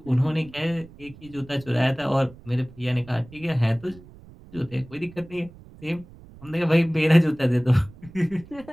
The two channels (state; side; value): noise; right; rumble, 21 dB below the sound